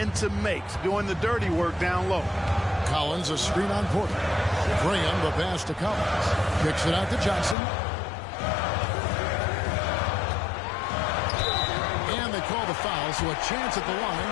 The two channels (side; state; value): right; drops out; at 7.6 s